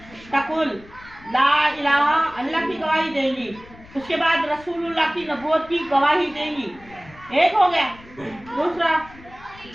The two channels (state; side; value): noise; left; rumble, 22 dB below the sound